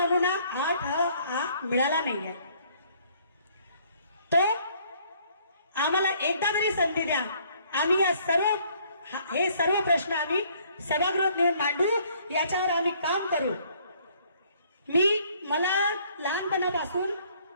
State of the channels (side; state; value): both; inverted; correlation -0.62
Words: 8 मिळाला नाहीये. तो आम्हाला एकदा तरी संधी द्या. आम्ही हे सर्व प्रश्न आम्ही सभागृहात नेऊन मांडू, याच्यावर आम्ही काम करू. मला लहानपणापासून